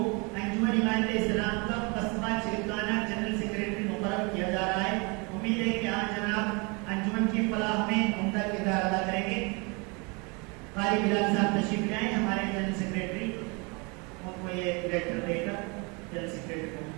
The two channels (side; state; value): left; quieter; 30.1 dB